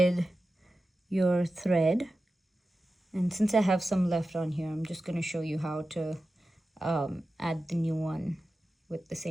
your thread. And since I have some left on here, I'm just going to show you how to add the new one with the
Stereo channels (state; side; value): normal; both; correlation 0.93